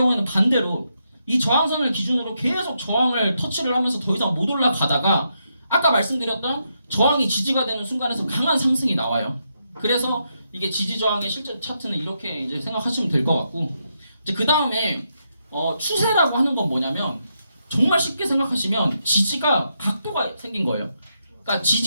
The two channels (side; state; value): both; inverted; correlation -0.81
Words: 반대로 이 저항선을 기준으로 계속 저항을 터치를 하면서 더 이상 못 올라가다가 아까 말씀드렸던 저항이 지지가 되는 순간에서 강한 상승이 나와요. 그래서 이게 지지 저항의 실제 차트는 이렇게 이제 생각하시면 될 것 같고, 이제 그 다음에 추세라고 하는 건 뭐냐면 정말 쉽게 생각하시면 지지가 각도가 생긴 거예요. 그러니까